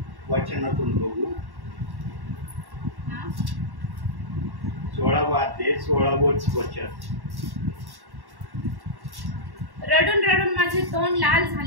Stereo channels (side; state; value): left; late; 1.1 ms